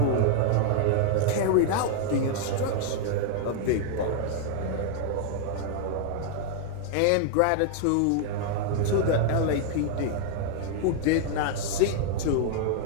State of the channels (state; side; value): different; both; correlation 0.00